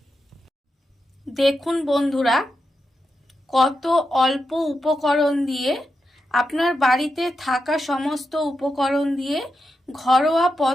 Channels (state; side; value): normal; both; correlation 0.87